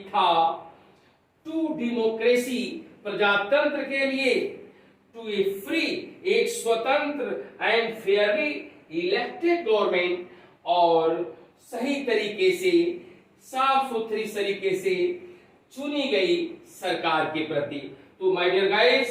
था, टू डेमोक्रेसी, प्रजातंत्र के लिए, टू ए फ्री, एक स्वतंत्र एंड फेयरली इलेक्टेड गवर्नमेंट, और सही तरीके से, साफ सुथरी तरीके से चुनी गई सरकार के प्रति। तो माय डियर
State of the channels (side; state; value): both; identical; correlation 1.00